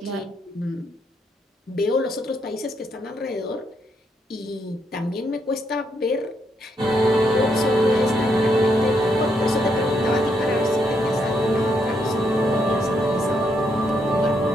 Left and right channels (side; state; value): both; normal; correlation 0.76